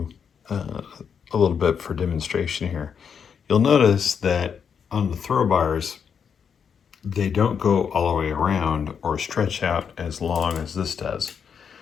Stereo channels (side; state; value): right; quieter; 7.0 dB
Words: a little bit for demonstration here. You'll notice that on the throw bars, they don't go all the way around or stretch out as long as this does.